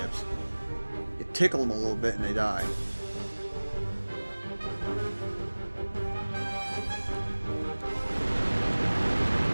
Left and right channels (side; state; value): both; inverted; correlation -1.00